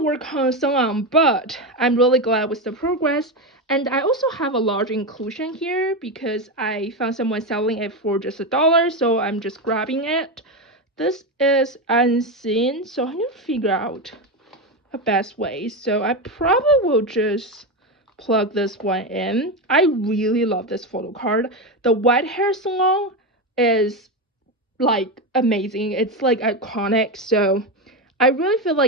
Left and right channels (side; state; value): both; normal; correlation 0.14